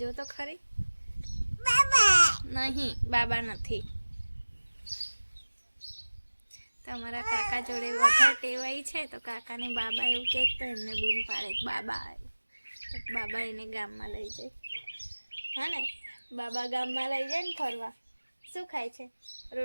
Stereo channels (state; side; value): inverted; both; correlation -1.00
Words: તો ખરી. નહીં, બાબા નથી. તમારા કાકા જોડે વધારે ટેવાઈ છે, તો કાકાને બાબા એવું કહે તો એમને બૂમ પાડે બાબા આવ્યું. તો બાબા એને ગામમાં લઈ જાય. હા ને, બાબા ગામમાં લઈ જાય ને ફરવા. શું ખાય છે?